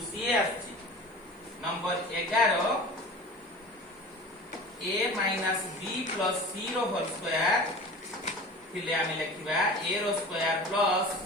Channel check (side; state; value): both; normal; correlation 0.37